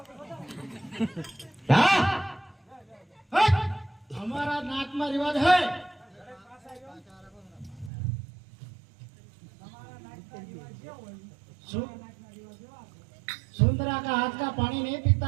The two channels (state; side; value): drops out; left; at 7.9 s